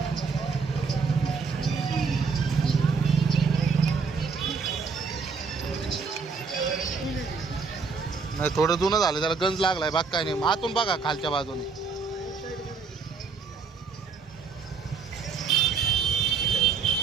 नाही थोडं जुनं झालं, त्याला गंज लागलाय. बाग काय नाही. आतून बघा खालच्या बाजूने.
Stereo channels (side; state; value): left; quieter; 5.1 dB